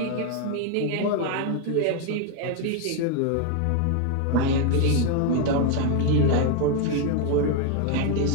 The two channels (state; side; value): different; both; correlation 0.01